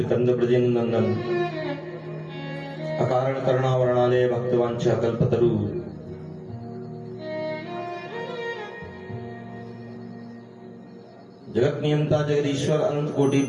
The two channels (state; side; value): identical; both; correlation 1.00